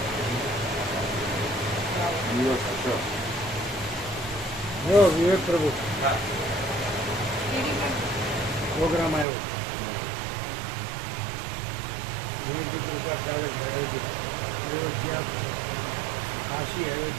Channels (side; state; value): left; drops out; at 9.2 s